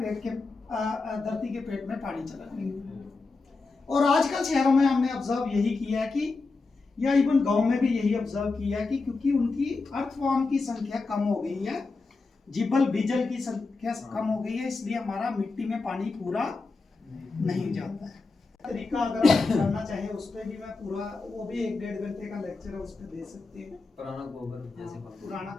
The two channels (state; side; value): quieter; right; 3.9 dB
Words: के धरती के पेट में पानी चला जाएगा। और आजकल शहरों में हमने ऑब्जर्व यही किया है कि, या इवन गांव में भी यही ऑब्जर्व किया है कि, क्योंकि उनकी अर्थवर्म की संख्या कम हो गई है, जिबल बीजल की संख्या कम हो गई है, इसलिए हमारा मिट्टी में पानी पूरा नहीं जाता है। तरीका अगर आप जानना चाहें उस पर भी मैं पूरा, वो भी 1-1.5 घंटे का लेक्चर है, उस पर दे सकते हैं। पुराना गोबर जैसे हाँ, पुराना